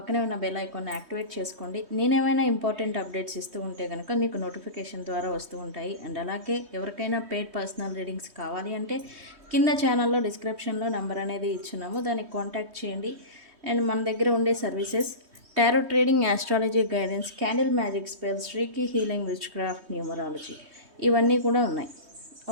ఉన్న బెల్ ఐకాన్ని యాక్టివేట్ చేసుకోండి. నేనేమైనా ఇంపార్టెంట్ అప్డేట్స్ ఇస్తూ ఉంటే కనుక మీకు నోటిఫికేషన్ ద్వారా వస్తూ ఉంటాయి. అండ్ అలాగే ఎవరికైనా పెయిడ్ పర్సనల్ రీడింగ్స్ కావాలి అంటే కింద ఛానల్లో డిస్క్రిప్షన్లో నెంబర్ అనేది ఇచ్చున్నాము, దానికి కాంటాక్ట్ చేయండి. అండ్ మన దగ్గర ఉండే services tarot trading, astrology guidance, candle magic spells, reiki healing, which craft, numerology ఇవన్నీ కూడా ఉన్నాయి.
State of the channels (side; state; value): left; late; 3.2 ms